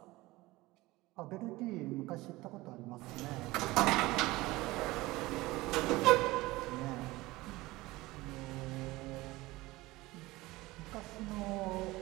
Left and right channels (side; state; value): left; quieter; 19.9 dB